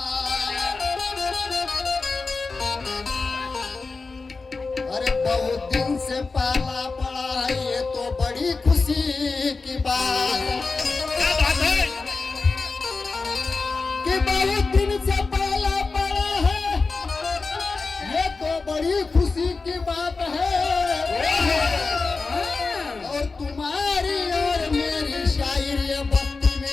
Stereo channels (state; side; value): quieter; right; 4.1 dB